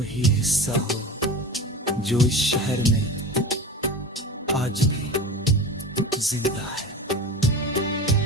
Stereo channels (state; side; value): normal; both; correlation 0.32